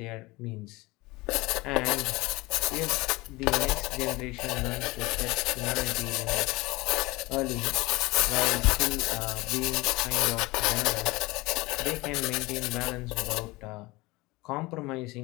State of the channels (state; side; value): quieter; right; 22.2 dB